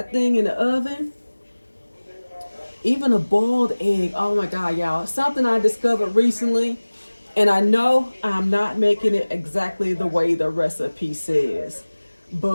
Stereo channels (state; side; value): inverted; both; correlation -1.00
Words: thing in the oven. Even a boiled egg. Oh my God, y'all. Something I discovered recently. And I know I'm not making it exactly the way the recipe says.